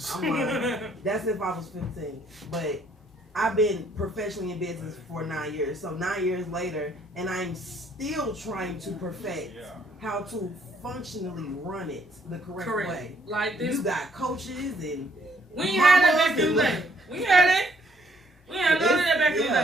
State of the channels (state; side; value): normal; both; correlation 0.66